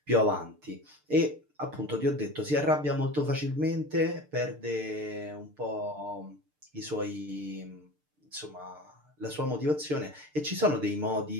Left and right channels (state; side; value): late; left; 6.7 ms